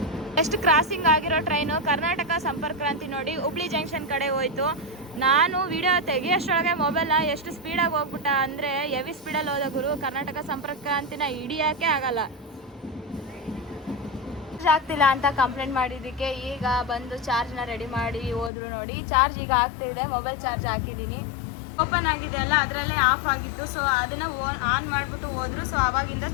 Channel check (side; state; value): right; drops out; at 18.5 s